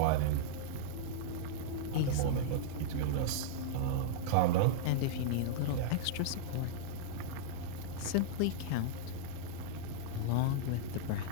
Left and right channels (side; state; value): both; different; correlation -0.02